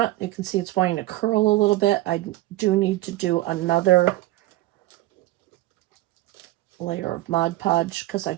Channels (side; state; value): left; quieter; 17.4 dB